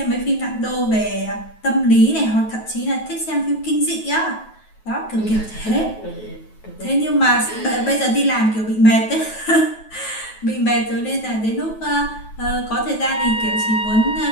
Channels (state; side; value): late; right; 9.2 ms